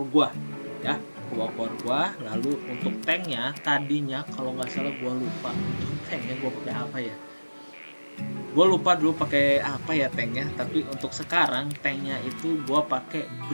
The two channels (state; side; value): inverted; both; correlation -1.00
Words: gua ya, 2 core gua. Lalu untuk tanknya tadinya kalau nggak salah gua lupa untuk tanknya gua pakai apa ya. Gue lupa dulu pakai apa ya tanknya, tapi untuk sekarang tanknya itu gue pakai